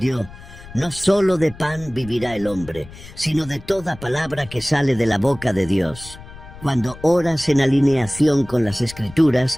«No solo de pan vivirá el hombre, sino de toda palabra que sale de la boca de Dios». Cuando oras en alineación con las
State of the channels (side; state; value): left; noise; rumble, 17 dB below the sound